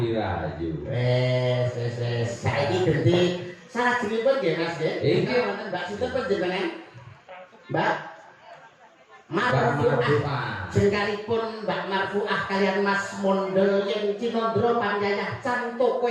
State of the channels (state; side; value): identical; both; correlation 1.00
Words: Rayu. Wes saiki ganti salajengipun nggih Mas nggih. Nggih wonten Mbak sinten panjenengan? Mbak Marfuah. Jengkalipun Mbak Marfuah kalian Mas Mondel yang Cinandra Panyayah Can toko